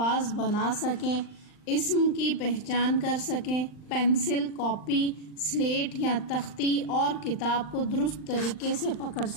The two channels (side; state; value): right; late; 39 ms